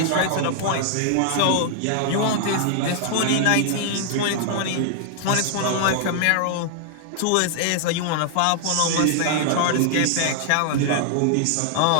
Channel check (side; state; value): both; different; correlation 0.00